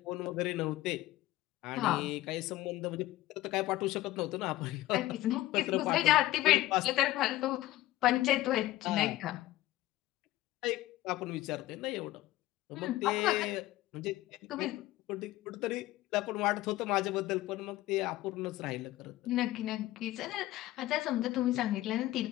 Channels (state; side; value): quieter; right; 16.2 dB